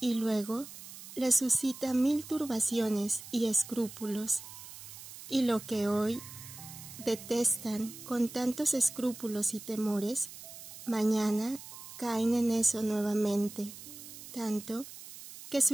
luego les suscita 1000 turbaciones y escrúpulos. Y lo que hoy detestan con tantos escrúpulos y temores, mañana caen en eso nuevamente, tanto que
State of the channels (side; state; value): right; noise; hiss, 14 dB below the sound